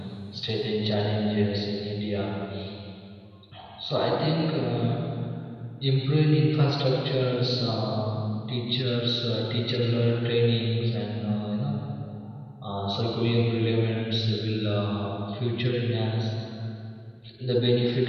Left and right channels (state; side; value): identical; both; correlation 1.00